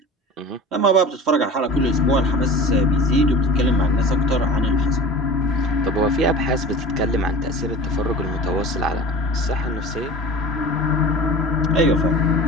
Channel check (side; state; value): both; normal; correlation 0.37